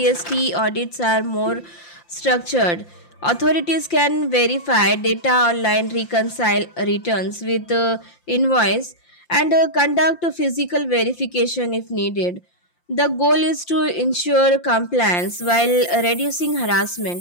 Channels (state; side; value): late; right; 5.8 ms